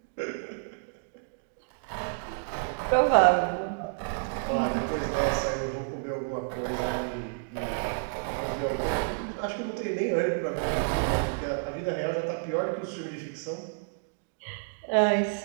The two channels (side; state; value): left; silent; digital silence